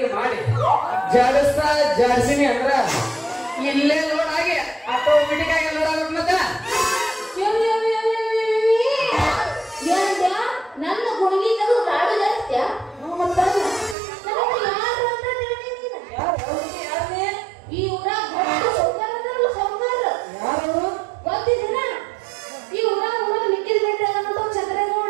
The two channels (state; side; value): drops out; left; at 14.0 s